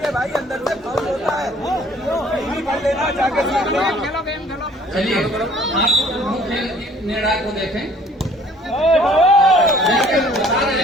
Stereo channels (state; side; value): normal; both; correlation 0.56